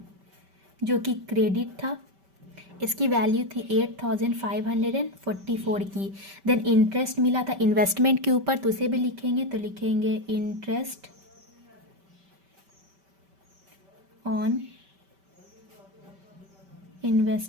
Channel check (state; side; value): late; left; 5.2 ms